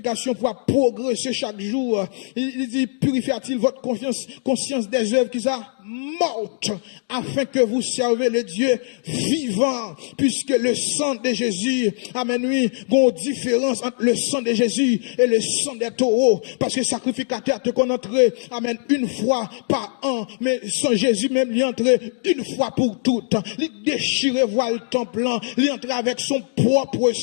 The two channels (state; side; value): silent; right; digital silence